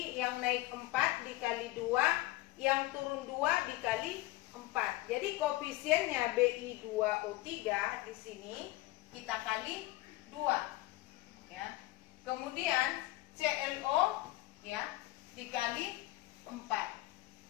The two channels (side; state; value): right; quieter; 18.6 dB